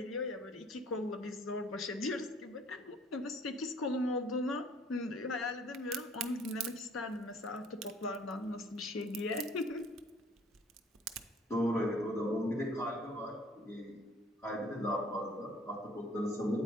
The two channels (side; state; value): both; normal; correlation 0.56